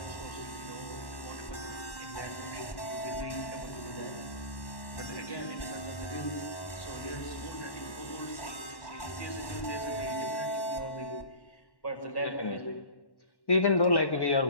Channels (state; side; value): late; right; 1.1 ms